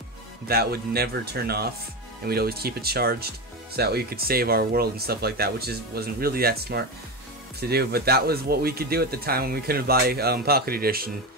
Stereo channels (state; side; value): normal; both; correlation 0.18